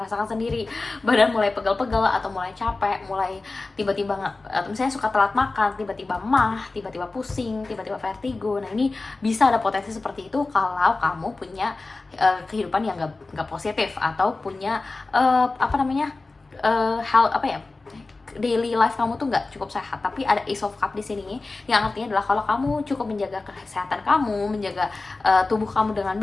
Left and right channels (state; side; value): quieter; right; 3.5 dB